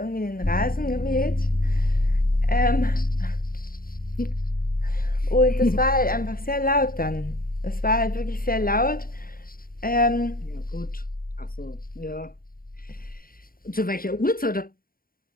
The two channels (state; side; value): late; right; 0.42 ms